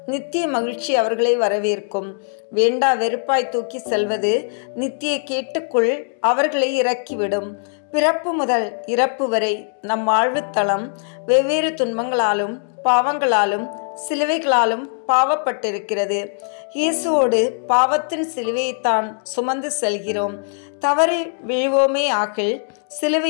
நித்திய மகிழ்ச்சி அவர்களை வரவேற்கும். வேண்டா வெறுப்பாய் தூக்கி செல்வது நித்திய கேட்டுக்குள் அவர்களை இறக்கிவிடும். பிறப்பு முதல் இறப்பு வரை நம் வாழ்வுத்தளம் வெவ்வேறு துன்பங்களாலும் பாவங்களாலும் சிலுவைகளாலும் பாவப்பட்டிருக்கிறது. இயேசுவோடு பாவத்தின் சிலுவையைத்தான் சுமந்து செல்கிறோம். தவறி விழுவோமே ஆகில்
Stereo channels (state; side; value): silent; right; digital silence